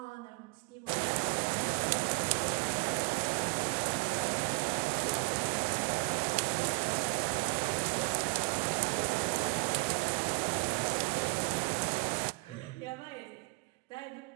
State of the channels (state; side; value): quieter; left; 31.1 dB